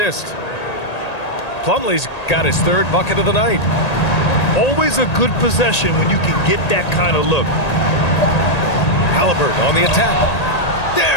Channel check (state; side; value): late; right; 1.8 ms